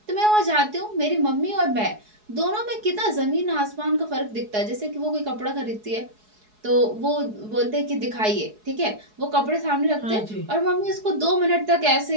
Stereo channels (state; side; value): late; left; 4.7 ms